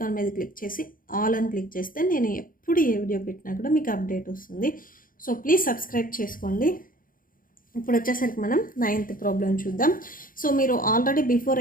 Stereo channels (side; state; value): right; late; 0.40 ms